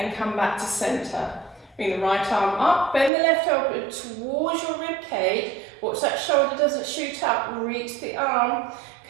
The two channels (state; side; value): drops out; left; at 3.1 s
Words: come back to centre. Bring the right arm up, bend the left elbow towards your rib cage. Watch that shoulder doesn't shoot up, reach the arm,